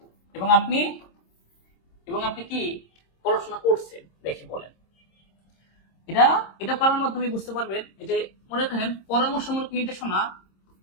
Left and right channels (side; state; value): right; late; 26 ms